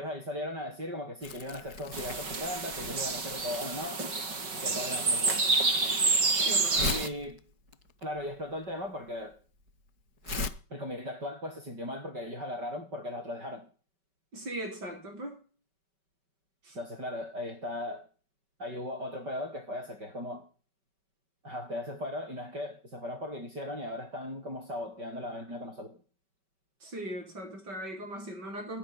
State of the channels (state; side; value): late; left; 5.2 ms